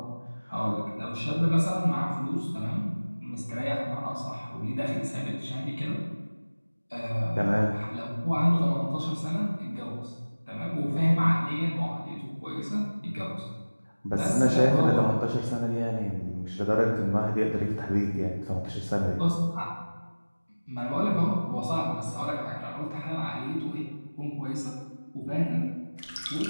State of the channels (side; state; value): both; inverted; correlation -1.00